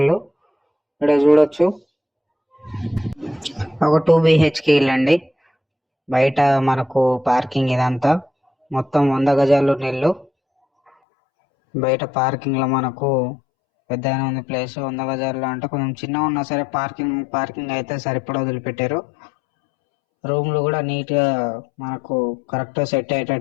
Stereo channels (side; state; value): right; drops out; at 10.9 s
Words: ఇక్కడ చూడొచ్చు, ఒక 2 BHK ఇల్లు అండి. బయట మనకు పార్కింగ్ ఇదంతా మొత్తం 100 గజాలు ఉన్న ఇల్లు. బయట పార్కింగ్ లో మనకు పెద్ద ఉంది ప్లేస్. 100 గజాల్లో అంటే కొంచెం చిన్నగా ఉన్నా సరే పార్కింగ్ అయితే సరిపడా వదిలిపెట్టారు. రూమ్లు కూడా నీట్ గా మనకు కరెక్ట్ సెట్